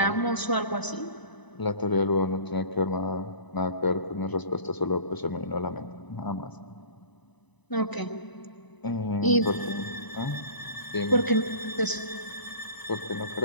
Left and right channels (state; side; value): late; right; 1.0 ms